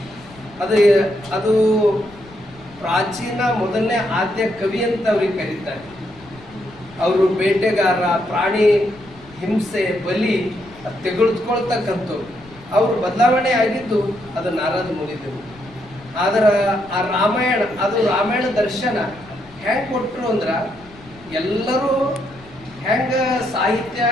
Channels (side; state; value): left; noise; rumble, 23 dB below the sound